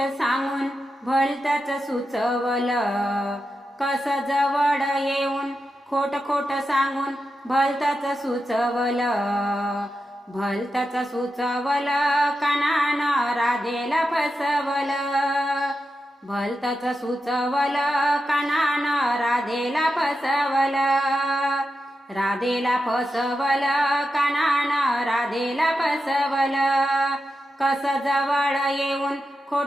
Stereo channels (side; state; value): both; normal; correlation 0.89